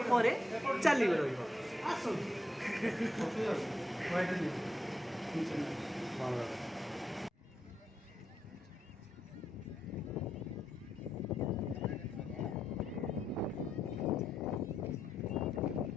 ପରେ ଚାଲିବ ରହିବ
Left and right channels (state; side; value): normal; both; correlation 0.81